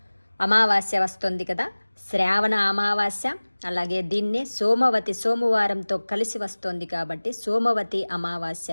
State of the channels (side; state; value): both; inverted; correlation -1.00